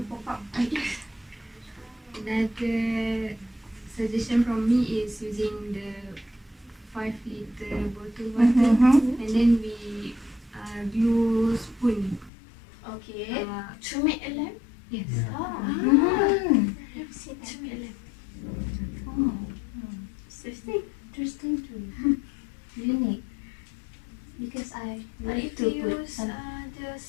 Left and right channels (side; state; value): right; drops out; at 12.3 s